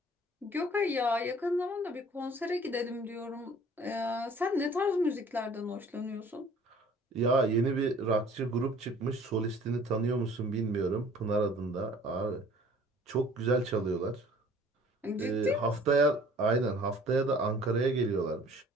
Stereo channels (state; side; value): normal; both; correlation 0.52